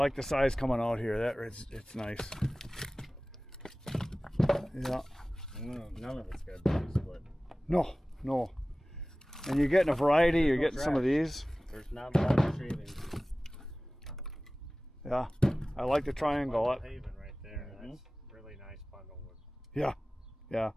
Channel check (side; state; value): both; normal; correlation 0.98